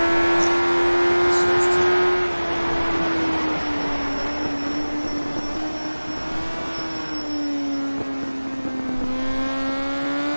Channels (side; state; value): both; inverted; correlation -1.00